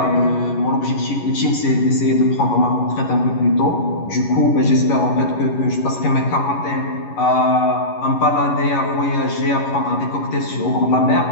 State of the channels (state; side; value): late; right; 11 ms